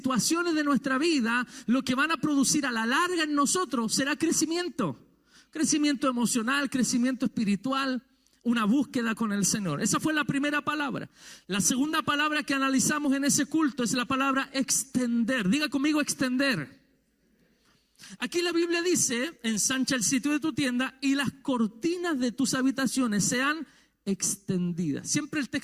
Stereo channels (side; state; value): both; identical; correlation 1.00